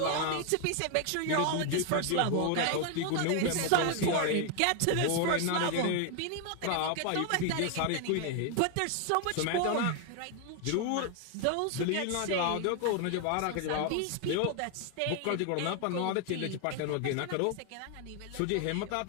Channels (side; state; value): both; different; correlation 0.01